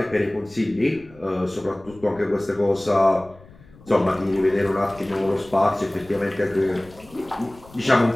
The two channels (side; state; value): left; noise; rumble, 24 dB below the sound